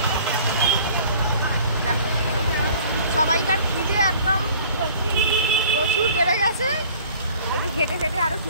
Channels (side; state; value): both; inverted; correlation -0.50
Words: দেখো সবাইকার খিদে একদম প্রচুর বেড়ে গেছে। একটু ঘেটে ঘেটে আরো